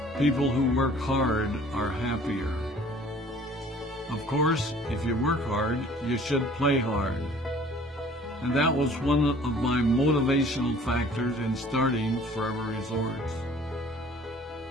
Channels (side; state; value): both; normal; correlation 0.52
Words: People who work hard are happier. Of course, if you work hard, you should play hard. And that was one of my motivational factors in starting Forever Resorts.